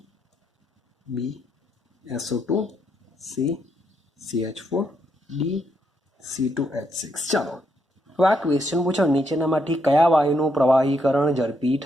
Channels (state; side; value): normal; both; correlation 0.77